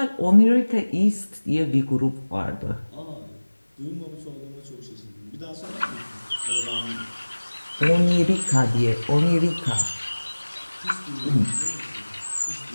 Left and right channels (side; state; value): both; inverted; correlation -1.00